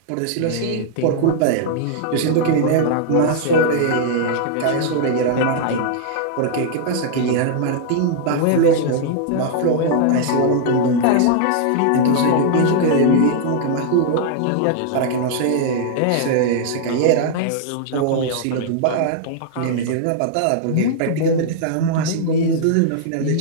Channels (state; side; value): different; both; correlation -0.01